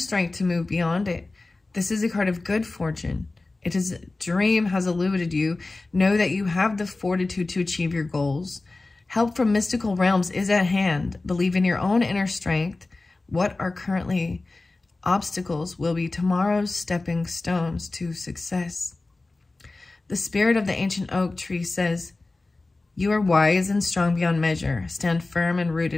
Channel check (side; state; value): right; quieter; 3.2 dB